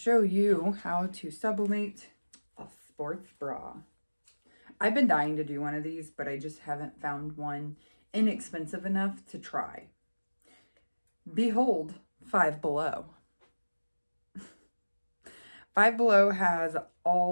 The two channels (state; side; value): inverted; both; correlation -1.00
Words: you how to sublimate a sports bra. I've been dying to do one of these, but I just haven't found one inexpensive enough to try. Behold, Five Below. Five Below has